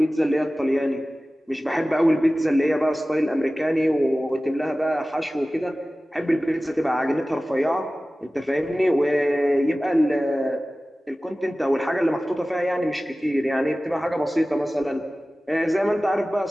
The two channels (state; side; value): normal; both; correlation 0.97